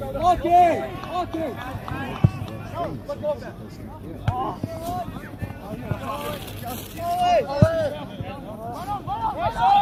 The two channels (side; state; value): both; identical; correlation 1.00